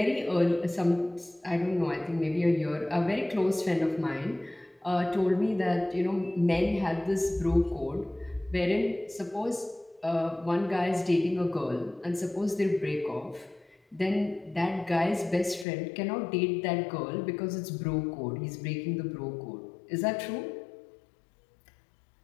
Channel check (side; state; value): right; drops out; at 15.7 s